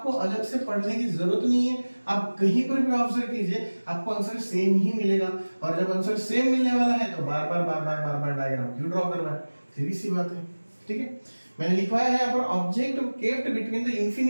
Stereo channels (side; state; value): both; inverted; correlation -1.00